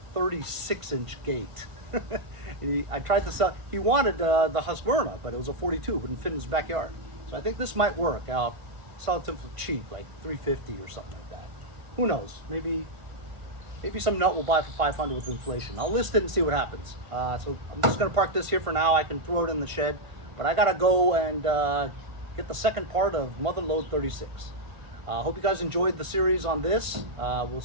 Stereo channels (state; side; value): late; left; 1.5 ms